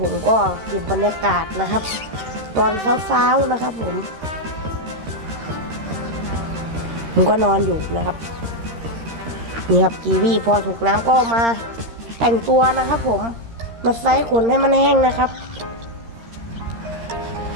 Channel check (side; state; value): left; late; 13 ms